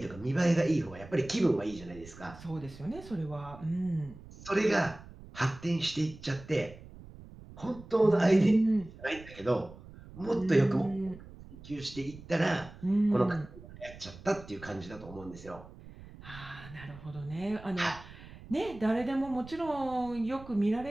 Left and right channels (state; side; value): noise; right; rumble, 17 dB below the sound